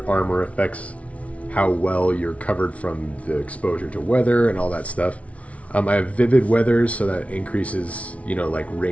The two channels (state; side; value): late; right; 0.065 ms